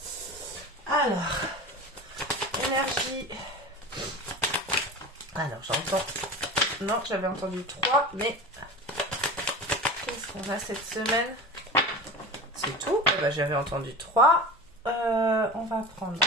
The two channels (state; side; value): normal; both; correlation 0.32